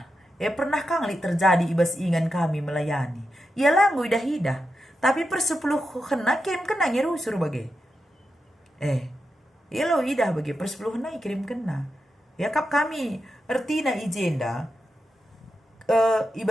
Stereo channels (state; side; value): normal; both; correlation 0.88